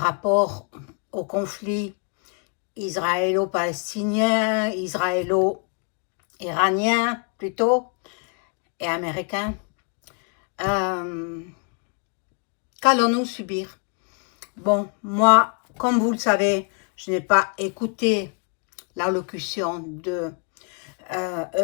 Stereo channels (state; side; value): quieter; right; 39.0 dB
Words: rapport au conflit israélo-palestinien, israélo-iranien plutôt, et américain? Euh, Qu'allons-nous subir? Bon, moi, comme vous le savez, je n'ai pas écouté l'allocution de